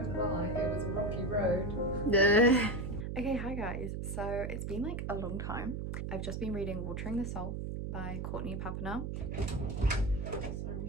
lie, it was a rocky road. Okay, hi guys. So it's been like a long time. I've just been reading Watering the Soul by Courtney Papernell. Sorry,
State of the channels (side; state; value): right; noise; hum, 4 dB below the sound